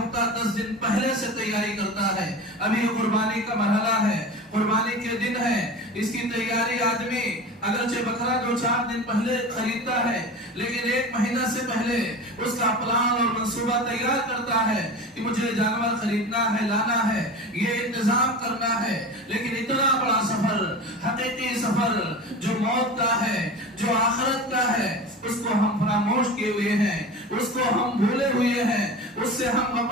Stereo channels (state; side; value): normal; both; correlation 0.31